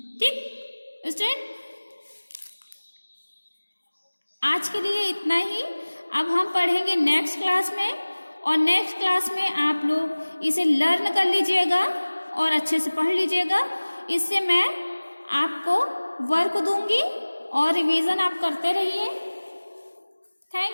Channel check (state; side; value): inverted; both; correlation -1.00